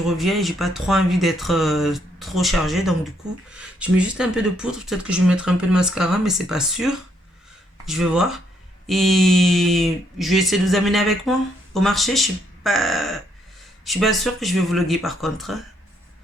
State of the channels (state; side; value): normal; both; correlation 0.72